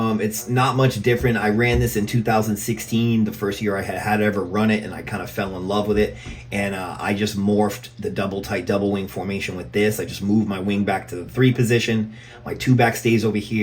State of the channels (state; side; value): identical; both; correlation 1.00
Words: not much different. I ran this in 2016, the first year I had ever run it, and I kind of fell in love with it. And I just morphed the double wing formation with this. I just moved my wing back to the 3 position. My 2 back stays over